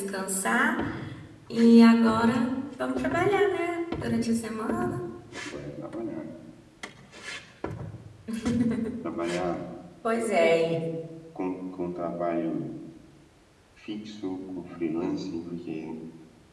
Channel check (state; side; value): identical; both; correlation 1.00